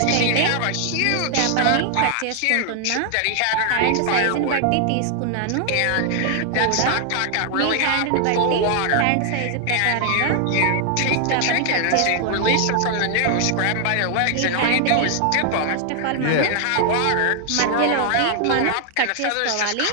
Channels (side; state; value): both; different; correlation 0.00